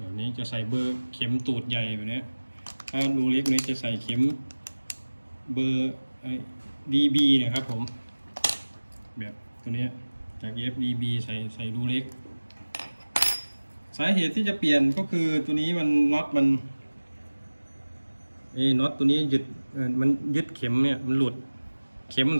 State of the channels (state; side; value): inverted; both; correlation -1.00